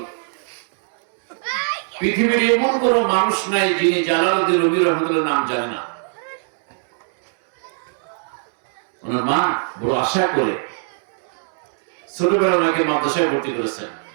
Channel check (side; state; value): left; silent; digital silence